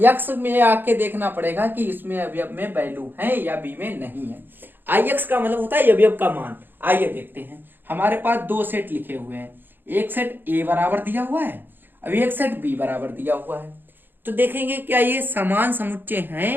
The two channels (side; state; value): left; late; 0.096 ms